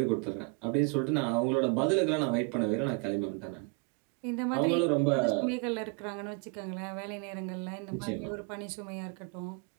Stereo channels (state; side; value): quieter; left; 33.0 dB